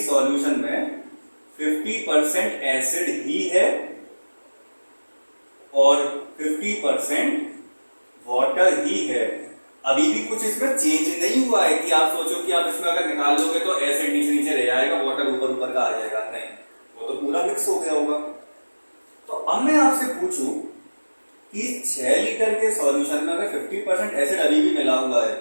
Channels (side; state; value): both; inverted; correlation -1.00